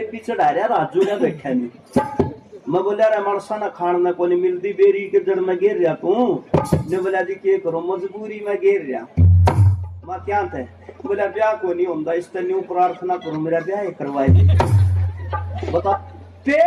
चढ़ा रहा, राजू ने बैठा नहीं। मैं बोला रे मरसा ना खान में को नहीं मिलती, बेरी के जड़ में गिर रहा तू। ने बोला जी क्या करो, मजबूरी में गिर रहा। मैं क्या थे? बोला ब्याह को नहीं होता, इस तरह न्यू प्रार्थना करो मेरा ब्याह करवाए। बता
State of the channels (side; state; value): both; identical; correlation 1.00